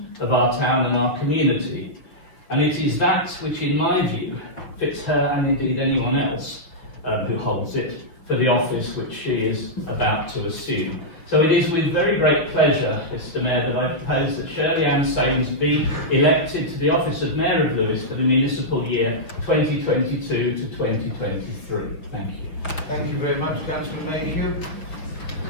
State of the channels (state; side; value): late; right; 6.3 ms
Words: of our town and our community. And it is that which, in my view, fits her and indeed anyone else who holds it for the office which she is about to assume. So it is with very great pleasure, Mr Mayor, that I propose that Shirley Ann Sains be elected to the office of Mayor of Lewes for the municipal year 2022 to 2023. Thank you. Thank you very much, Councillor Mayhew.